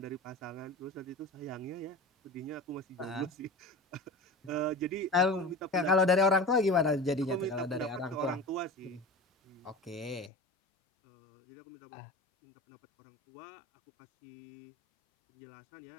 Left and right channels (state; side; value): drops out; right; at 10.3 s